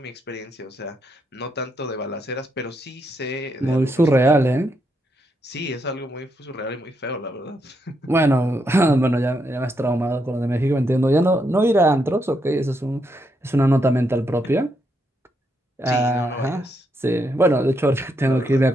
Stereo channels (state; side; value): normal; both; correlation 0.79